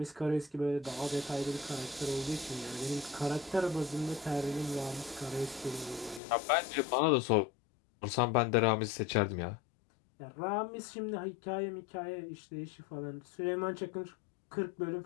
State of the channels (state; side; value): drops out; right; at 6.2 s